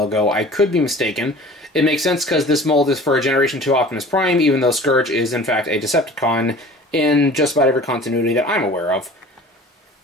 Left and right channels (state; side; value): normal; both; correlation 0.43